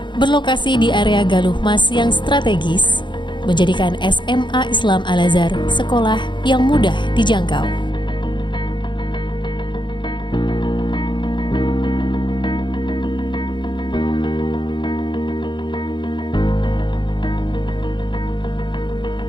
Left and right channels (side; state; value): right; late; 0.23 ms